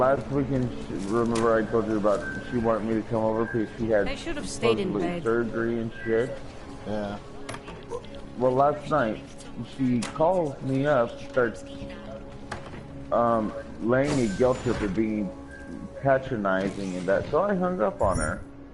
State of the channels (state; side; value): identical; both; correlation 1.00